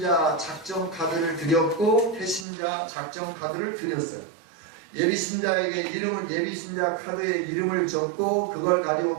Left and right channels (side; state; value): left; drops out; at 2.5 s